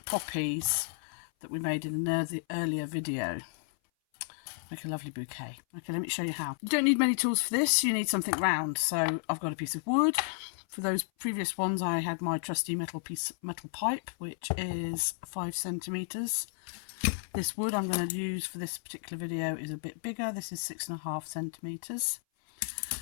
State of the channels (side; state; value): right; silent; 56 dB below the other